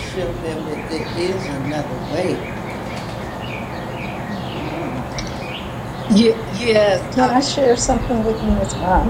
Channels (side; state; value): both; identical; correlation 1.00